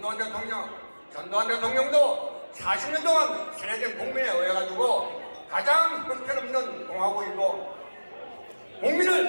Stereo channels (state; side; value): inverted; both; correlation -1.00